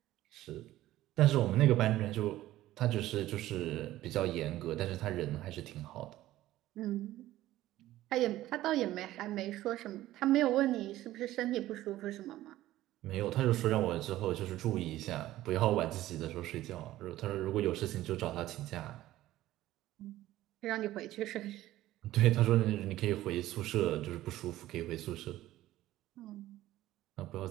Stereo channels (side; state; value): left; quieter; 15.1 dB